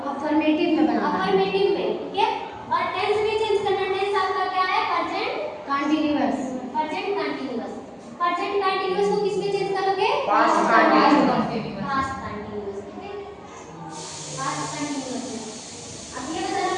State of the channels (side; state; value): both; identical; correlation 1.00